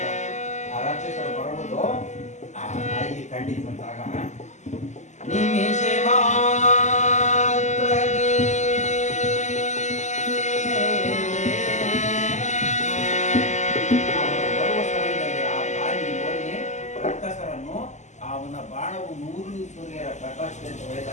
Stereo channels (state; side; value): late; right; 0.34 ms